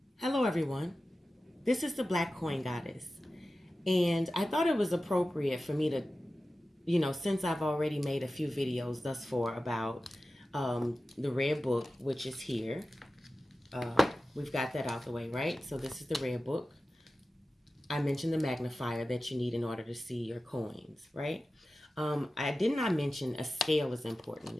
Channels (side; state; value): both; normal; correlation 0.94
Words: Hello, everyone. This is the Black Coin Goddess. And I thought it was appropriate for me to, since I've already made a few videos thus far about the red book, which is here. We've got that out the way, right? So this is the red book. I mentioned the magnifier that you need in order to see your coins, right? I did not mention a scale is important.